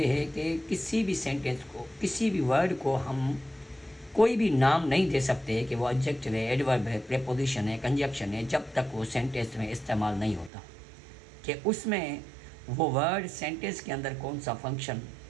है कि किसी भी sentence को, किसी भी वर्ड को हम कोई भी नाम नहीं दे सकते कि वो एडजेक्टिव है, एडवर्ब है, प्रीपोजिशन है, कंजक्शन है, जब तक वो सेंटेंस में इस्तेमाल नहीं होता कि उसमें वो वर्ड सेंटेंस के अंदर कौन सा फंक्शन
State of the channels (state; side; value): drops out; left; at 10.5 s